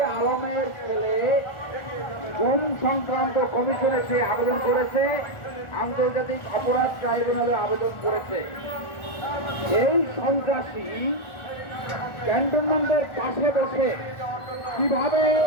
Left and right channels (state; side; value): late; right; 1.4 ms